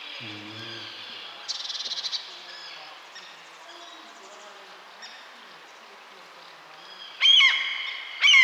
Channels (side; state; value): both; identical; correlation 1.00